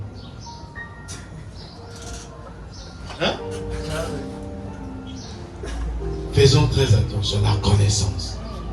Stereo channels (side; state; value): both; identical; correlation 1.00